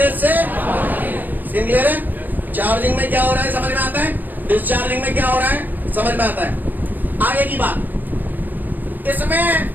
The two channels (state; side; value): late; left; 0.086 ms